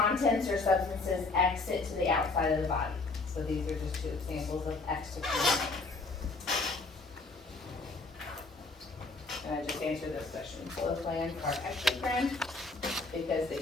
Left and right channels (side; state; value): right; quieter; 3.5 dB